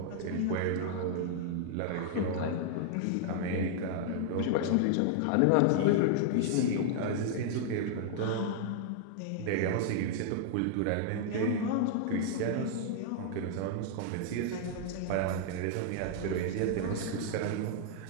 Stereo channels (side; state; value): both; different; correlation -0.01